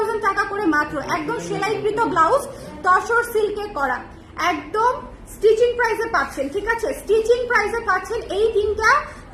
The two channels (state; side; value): identical; both; correlation 1.00